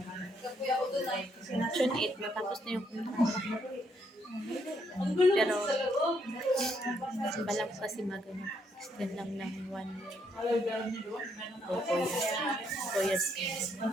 June 8, matapos na yung kontrata. Pero, balang kasi extend lang ng 1 year. O 4 years. 4 years.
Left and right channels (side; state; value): both; normal; correlation 0.73